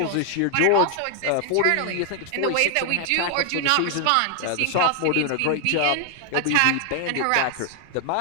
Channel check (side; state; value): both; different; correlation 0.00